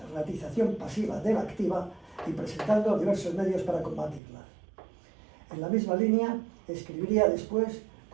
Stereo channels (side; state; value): left; drops out; at 4.2 s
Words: pasiva de la activa y presentando diversos medios para combatirlas. En la misma línea, escribiría después